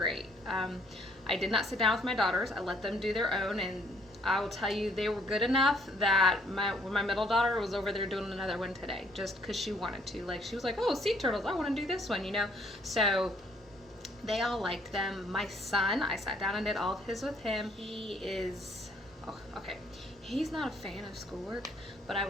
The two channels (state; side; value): normal; both; correlation 0.65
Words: I did not sit down with my daughters. I let them do their own, and I will tell you they were good enough that when my middle daughter was over there doing another one today, just because she wanted to. Like, she was like, oh, sea turtles, I want to do this one, So they all liked them. My son, I sat down and did all of his with him. He is, he's not a fan of schoolwork, but I